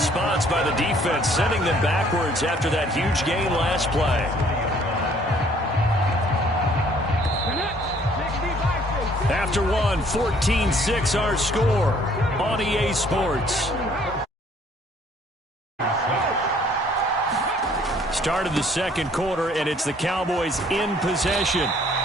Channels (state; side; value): normal; both; correlation 0.60